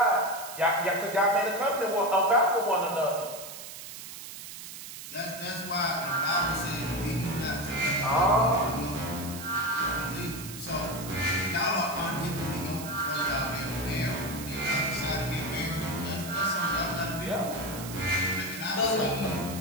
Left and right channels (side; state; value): right; noise; hiss, 11 dB below the sound